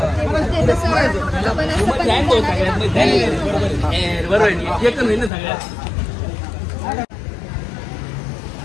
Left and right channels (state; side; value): drops out; right; at 5.3 s